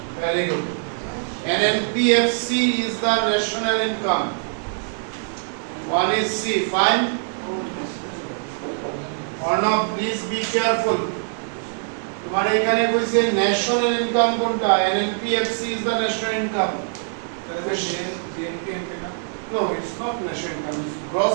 Very good. NNPFC is the national income. One is C. Fine. Arnav, please be careful. तुम्हारे এখানে কইছে national income কোনটা? NNPFC is the national income. No, it's not national income. It's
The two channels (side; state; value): left; silent; 63 dB below the other